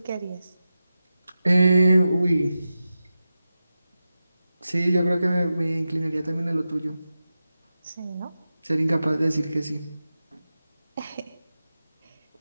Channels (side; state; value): both; inverted; correlation -0.93